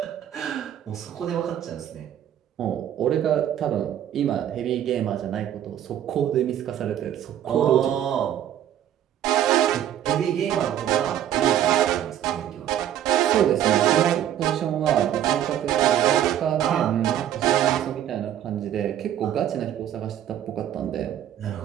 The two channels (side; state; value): left; quieter; 10.9 dB